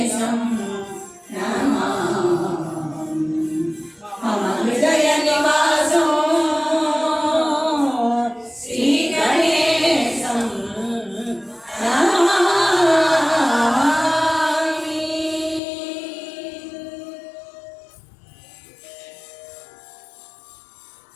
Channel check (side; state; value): right; drops out; at 15.6 s